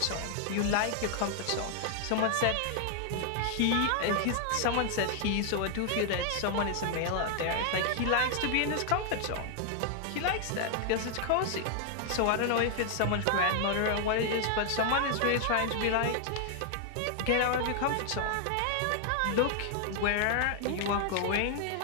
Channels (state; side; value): different; both; correlation 0.00